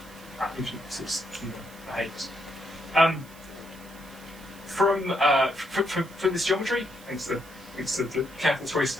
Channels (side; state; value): right; noise; hiss, 22 dB below the sound